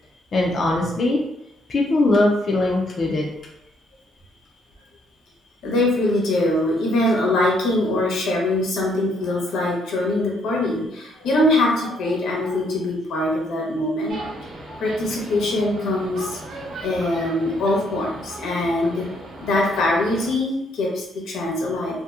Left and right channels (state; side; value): normal; both; correlation 0.70